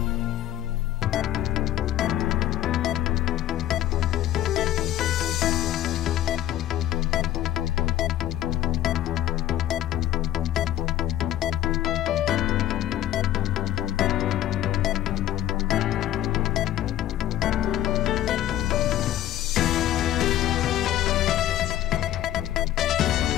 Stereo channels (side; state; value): right; quieter; 12.8 dB